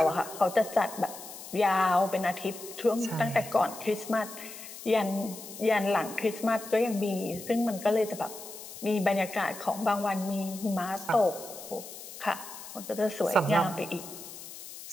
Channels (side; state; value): left; noise; hiss, 13 dB below the sound